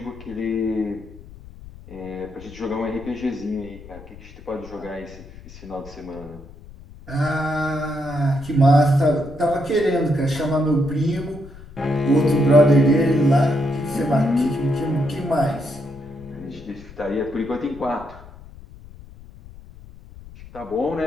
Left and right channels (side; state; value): left; noise; rumble, 18 dB below the sound